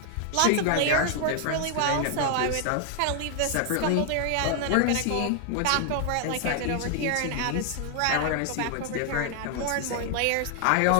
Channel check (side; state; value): both; different; correlation 0.00